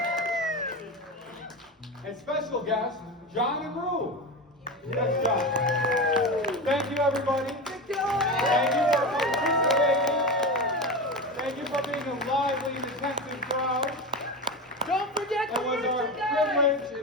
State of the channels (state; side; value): normal; both; correlation 0.22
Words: And special guest, John and Rue. That's John. Thank you, everybody. Thank you for participating. Thank you for being a lively and attentive crowd. Don't forget the It was our privilege